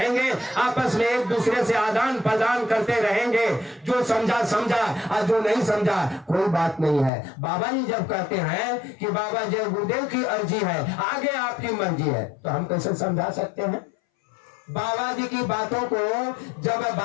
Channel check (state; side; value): drops out; right; at 7.1 s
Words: आपस में एक दूसरे से आदान प्रदान करते रहेंगे। जो समझा समझा और जो नहीं समझा कोई बात नहीं है। बाबा जी जब कहते हैं कि बाबा जी गुरुदेव की अर्जी है, आगे आपकी मर्जी है, तो हम कैसे समझा सकते हैं? बाबा जी की बातों को जब